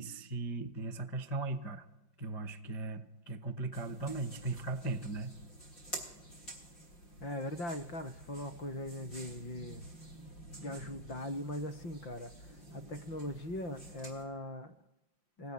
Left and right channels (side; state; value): right; late; 5.7 ms